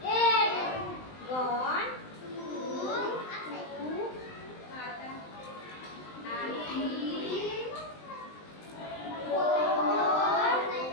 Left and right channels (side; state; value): right; late; 19 ms